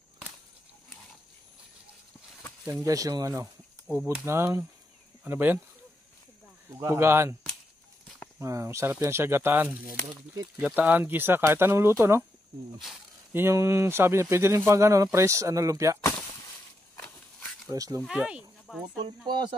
Yan guys, yung ano, ubod ng, ano ba yan? Pugahan. Sarap yan siya, gataan. Gataan, gisa, kahit anong luto, no? Yun yung sabi niya, pwede rin pang ano, press, lumpia. Press lumpia. Ay, nabasag Putol na. pa,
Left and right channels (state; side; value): normal; both; correlation 0.83